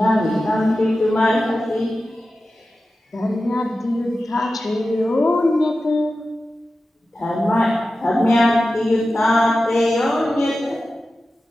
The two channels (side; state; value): both; normal; correlation 0.93